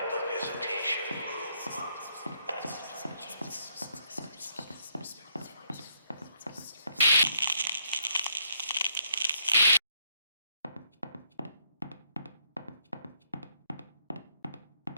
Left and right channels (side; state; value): both; inverted; correlation -0.72